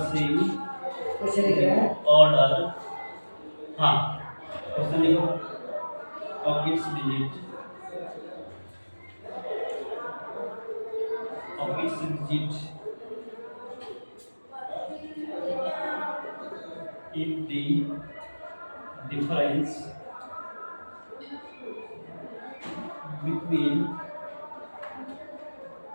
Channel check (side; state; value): both; inverted; correlation -1.00